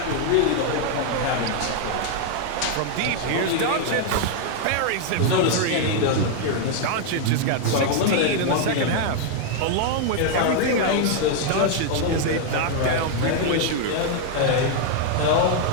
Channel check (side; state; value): both; different; correlation 0.00